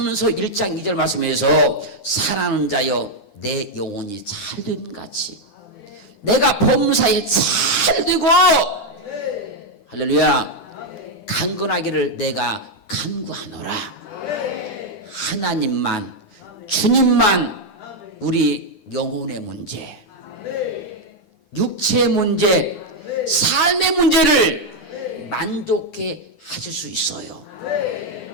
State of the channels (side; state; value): right; late; 9.9 ms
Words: 1장 2절 말씀에서 사랑하는 자여 내 영혼이 잘됨 같이 내가 범사에 잘되고 할렐루야 강건하기를 내가 간구하노라. 하나님만, 주님만 우리 영혼의 문제, 육체의 문제, 삶의 문제를 만족해 하실 수 있어요.